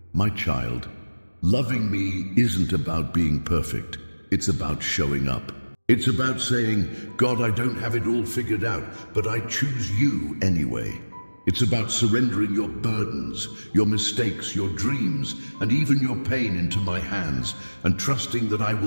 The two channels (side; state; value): both; inverted; correlation -1.00